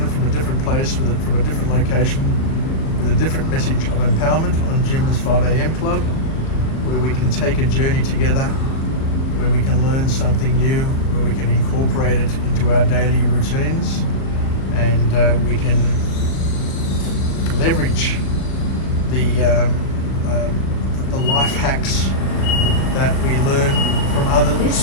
from a different place, from a different location, with a different message of empowerment on Jim's 5am Club, where we can take a journey together, where we can learn something new, where we can incorporate it into our daily routines, and we can leverage the life hacks that we learn from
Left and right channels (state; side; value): late; right; 37 ms